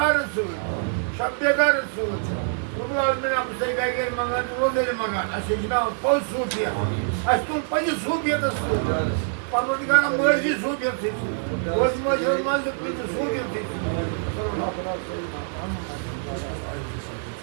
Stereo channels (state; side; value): silent; left; 62 dB below the other